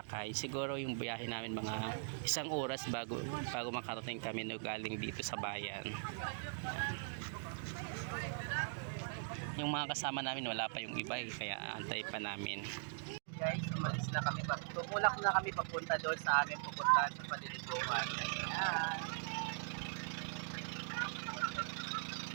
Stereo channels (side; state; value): left; silent; digital silence